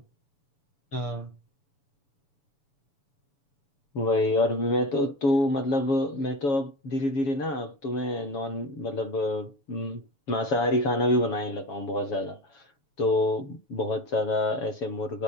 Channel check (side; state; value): right; late; 7.0 ms